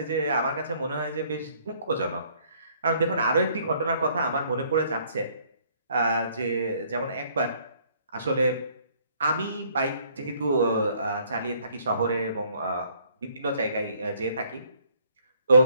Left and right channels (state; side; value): inverted; both; correlation -0.63